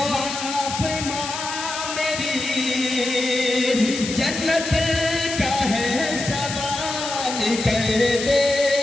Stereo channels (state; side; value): noise; left; hiss, 6 dB below the sound